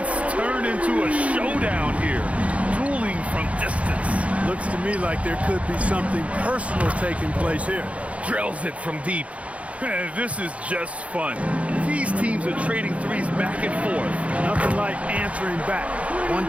turned into a showdown here. Dueling from distance. Looks to me like there could be something personal taking place here. Drills it from deep. This is just fun. These teams are trading threes back and forth. Nothing like answering back. One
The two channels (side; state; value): left; late; 0.064 ms